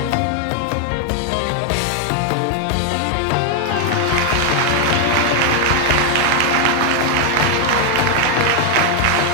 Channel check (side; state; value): both; different; correlation 0.01